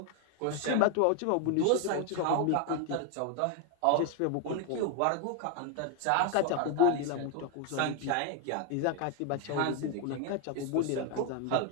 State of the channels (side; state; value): both; different; correlation 0.00